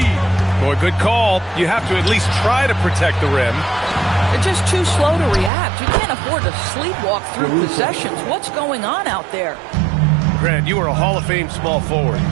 Boy, good call. You have to at least try to protect the rim. They're just too slow to react. You can't afford to sleepwalk through possessions. What's going on out there? Grant, you are a Hall of Fame small forward,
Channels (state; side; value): drops out; left; at 5.5 s